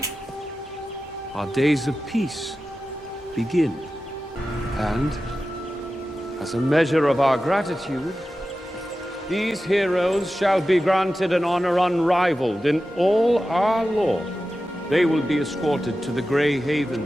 our days of peace begin. And as a measure of our gratitude, these heroes shall be granted an honor unrivaled in all our lore. They will be escorted to the Grey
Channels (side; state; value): both; normal; correlation 0.93